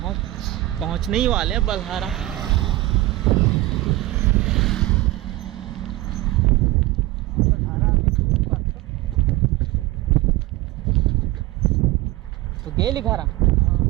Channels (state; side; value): quieter; left; 17.6 dB